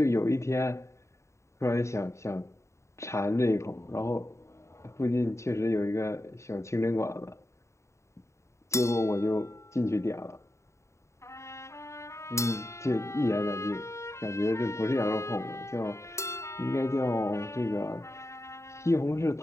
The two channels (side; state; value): right; late; 0.14 ms